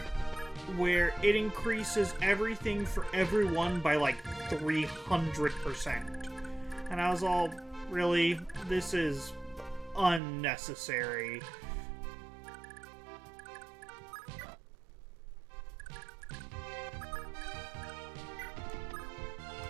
where it increases everything for everyone by like 300%. And I was all, really? This is unnecessary.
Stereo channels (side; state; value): left; drops out; at 10.2 s